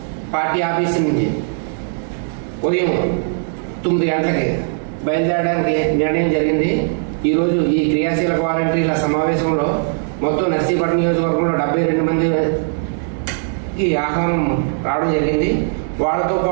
పార్టీ ఆఫీస్ నుంచి ఉదయం 9 గంటలకి బయలుదేరడానికి నిర్ణయం జరిగింది. ఈరోజు ఈ క్రియాశీల వాలంటీర్ల సమావేశంలో మొత్తం నర్సీపట్నం నియోజకవర్గంలో 72 మందికి ఆహ్వానం రావడం జరిగింది. వాళ్ళతో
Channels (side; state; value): left; silent; digital silence